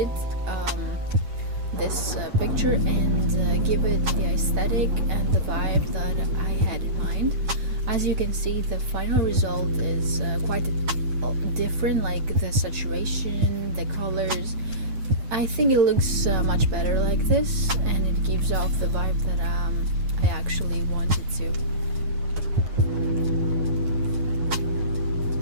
this picture and give it the aesthetic and the vibe that I had in mind. As you can see, the final result is quite different, like the saturation, the colors. I think it looks much better like this, and it gives off the vibe that I actually wanted to.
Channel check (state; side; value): late; left; 8.8 ms